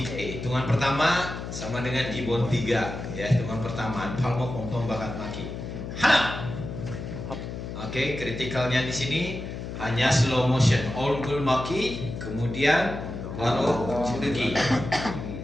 Hitungan pertama sama dengan Gibbon 3 ya, hitungan pertama palmo pongtong bakat maki. Hana. Oke, kritikalnya di sini hanya slow motion, all gul maki, kemudian baru Jurugi.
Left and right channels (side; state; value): left; noise; hum, 7 dB below the sound